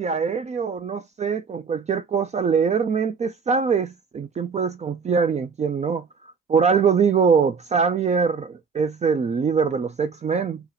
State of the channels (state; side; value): quieter; left; 5.6 dB